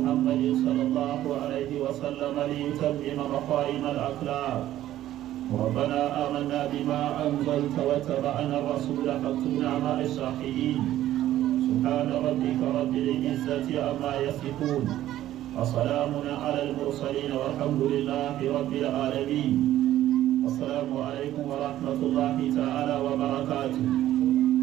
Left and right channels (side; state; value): left; quieter; 13.4 dB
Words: صلى الله عليه وسلم ليتمم مقايم الأخلاق. ربنا آمنا بما أنزلت واتبعنا الرسول فاكتبنا مع الشاهدين. سبحان ربك رب العزة عما يصفون وسلام على المرسلين والحمد لله رب العالمين. السلام عليكم ورحمة الله تعالى وبركاته.